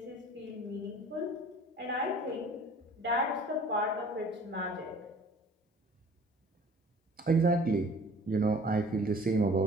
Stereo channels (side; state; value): both; normal; correlation 0.50